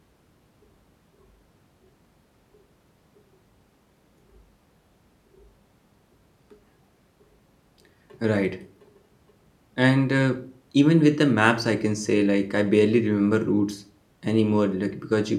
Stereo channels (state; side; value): identical; both; correlation 1.00